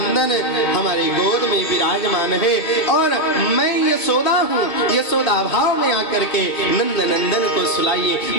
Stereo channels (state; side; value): late; right; 2.5 ms